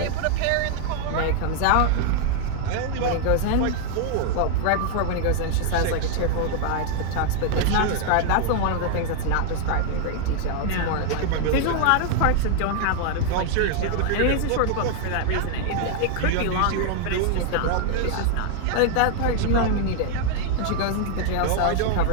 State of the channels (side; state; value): both; different; correlation 0.00